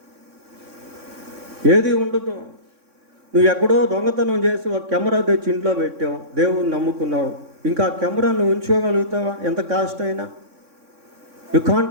ఏది ఉండదు. నువ్వు ఎక్కడో దొంగతనం చేసి ఒక కెమెరా తెచ్చి ఇంట్లో పెట్టావు, దేవుని నమ్ముకున్నావు, ఇంకా ఆ కెమెరా నువ్వు ఉంచుకోగలుగుతావా? ఎంత కాస్ట్ అయినా యు కాంట్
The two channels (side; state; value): left; late; 3.6 ms